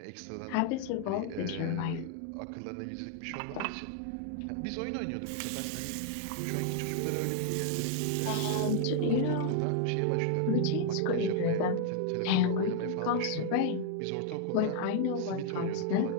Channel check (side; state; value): both; different; correlation -0.01